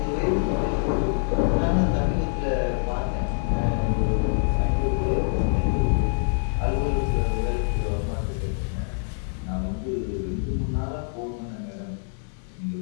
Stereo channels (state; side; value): silent; right; 62 dB below the other